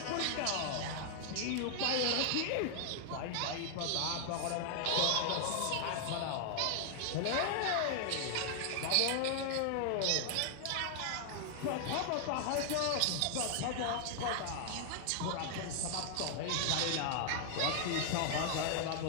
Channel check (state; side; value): different; both; correlation 0.00